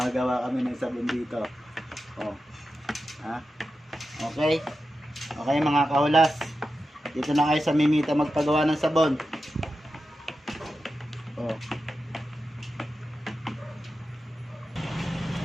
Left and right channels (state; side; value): normal; both; correlation 0.91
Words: kami ng sabon dito. Oh. Ha? Okay? Okay mga kahulas. Dito na kayo sa Mimita magpagawa ng sabon. Oh.